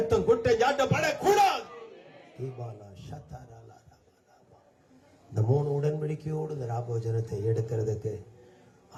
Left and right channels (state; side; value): identical; both; correlation 1.00